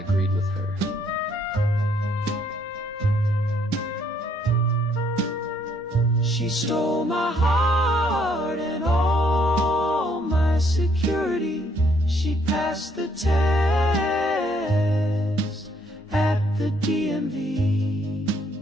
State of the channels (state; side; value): normal; both; correlation 0.68